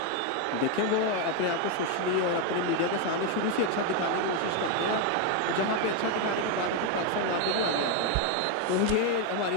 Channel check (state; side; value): different; both; correlation 0.01